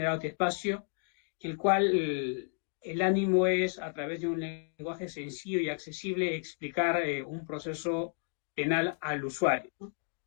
este espacio, el cual el ánimo es, a través de un lenguaje sencillo y accesible, explicar un proceso penal al usuario, ¿no?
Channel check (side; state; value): right; silent; digital silence